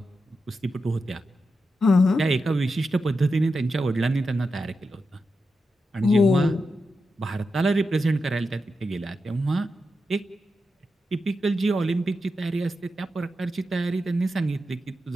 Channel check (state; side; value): normal; both; correlation 0.88